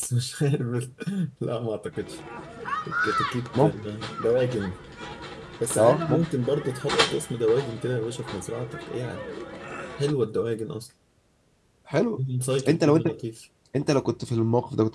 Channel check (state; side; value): identical; both; correlation 1.00